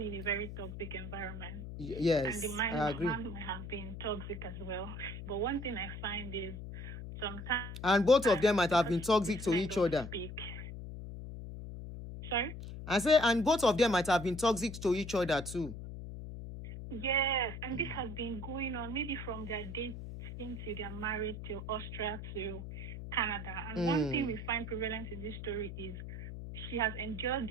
in a very toxic environment. Yes, And the man I agree. might have been toxic as well. But one thing I find is sometimes... And both of them might have been toxic to men each don't other. speak. Sorry? I say, and both of them might have been toxic to each other too. Yes, and this has been going on maybe from their dating to their marriage to Austria to Canada. And one thing we find prevalent in this story is she has endured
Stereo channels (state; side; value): noise; left; hum, 9 dB below the sound